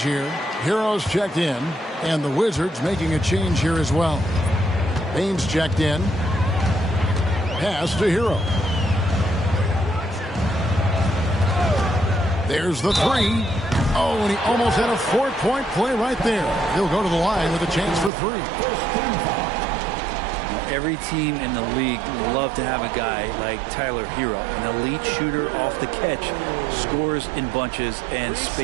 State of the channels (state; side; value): drops out; left; at 18.1 s